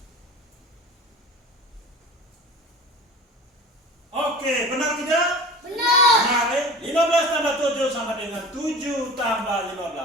Oke, benar tidak? Benar. 15 tambah 7 sama dengan 7 tambah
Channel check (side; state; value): both; normal; correlation 0.37